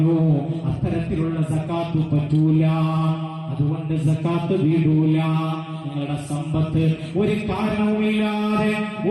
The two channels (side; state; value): both; identical; correlation 1.00